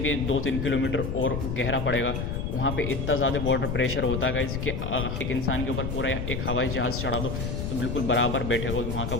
2-3 किलोमीटर और गहरा पड़ेगा। वहाँ पे इतना ज़्यादा वाटर प्रेशर होता है कि एक इंसान के ऊपर पूरा एक हवाई जहाज़ चढ़ा दो तो बिल्कुल बराबर बैठेगा वहाँ का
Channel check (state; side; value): noise; left; rumble, 3 dB below the sound